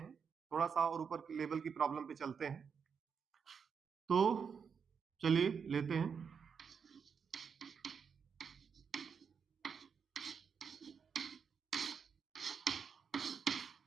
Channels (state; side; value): quieter; left; 6.4 dB